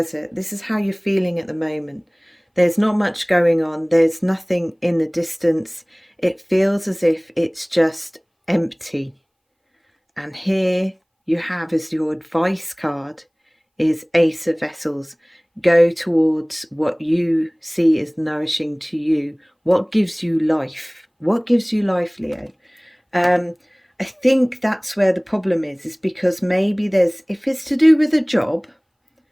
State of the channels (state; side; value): identical; both; correlation 1.00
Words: This is how you're feeling at the moment. There's not much going on. There's nothing in the distance. It feels as if it's just empty. And here you have as your advice card is Ace of Vessels. Go towards what you see as nourishing to you. What gives you life? What gives you life, Leo? I think that's where the problem is because maybe if it's to do with a job,